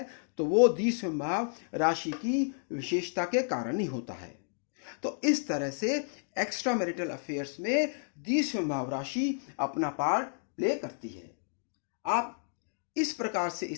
तो वो द्विसंभाव राशि की विशेषता के कारण ही होता है। तो इस तरह से एक्स्ट्रा मैरिटल अफेयर्स में द्विसंभाव राशि अपना पार्ट प्ले करती है। आप इस प्रकार से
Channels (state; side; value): silent; right; digital silence